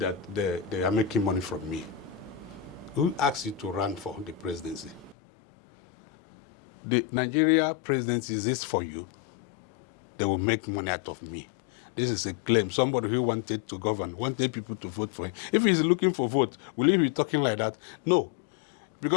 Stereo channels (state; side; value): drops out; right; at 5.2 s